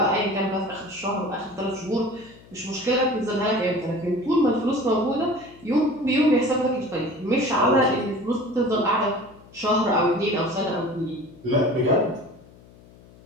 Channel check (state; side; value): noise; left; hum, 24 dB below the sound